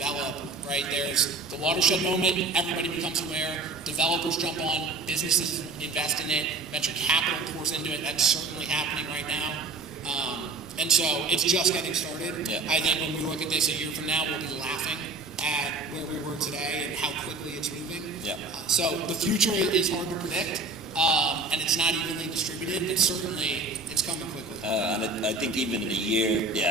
right, there's the watershed moment, everybody becomes aware, developers jump on, businesses invest in it, venture capital pours into it, that's certainly happening right now. And so it's just getting started. Yeah. I think when we look at this a year from now, we'll be laughing at where we were today and how quickly it's moving. Yeah. So the future is hard to predict. and it's not evenly distributed, but certainly it's coming quickly. And I think even in a year,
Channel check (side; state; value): left; quieter; 3.5 dB